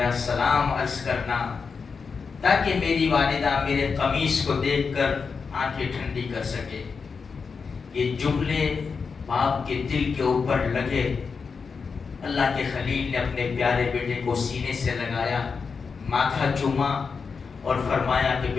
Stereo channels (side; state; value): right; quieter; 5.3 dB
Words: سلام عرض کرنا تاکہ میری والدہ میرے قمیص کو دیکھ کر آنکھیں ٹھنڈی کر سکے۔ یہ جملے باپ کے دل کے اوپر لگے۔ اللہ کے خلیل نے اپنے پیارے بیٹے کو سینے سے لگایا، ماتھا چوما اور فرمایا کہ